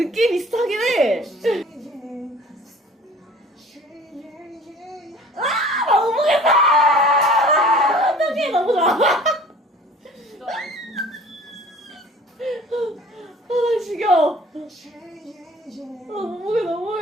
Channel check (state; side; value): normal; both; correlation 0.47